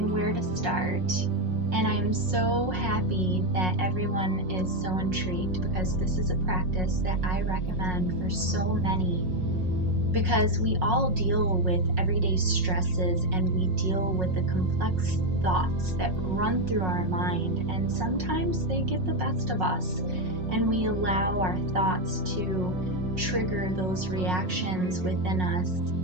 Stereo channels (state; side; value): late; left; 5.5 ms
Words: where to start. And I'm so happy that everyone is so intrigued because this is a practice that I recommend for so many, because we all deal with everyday stresses and we deal with the complex thoughts that run through our mind, and sometimes they get the best of us and we allow our thoughts to trigger those reactions within us